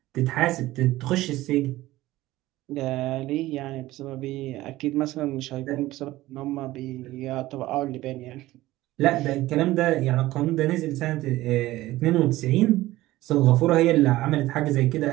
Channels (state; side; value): quieter; left; 16.9 dB